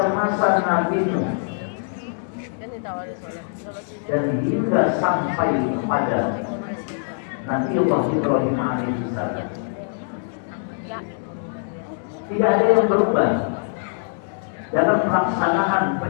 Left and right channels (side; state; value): right; silent; digital silence